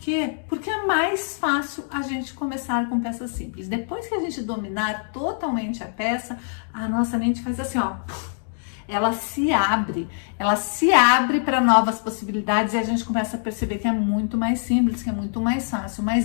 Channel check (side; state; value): right; silent; digital silence